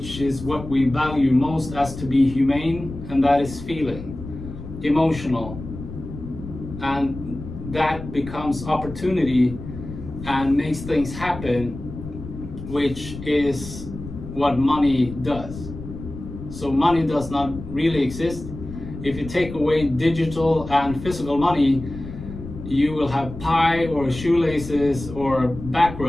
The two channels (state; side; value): noise; left; rumble, 11 dB below the sound